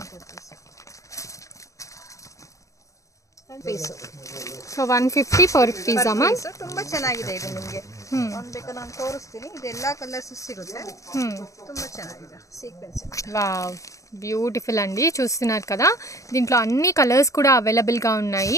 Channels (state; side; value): late; right; 0.16 ms